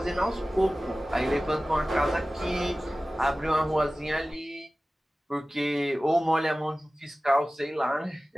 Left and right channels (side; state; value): both; normal; correlation 0.97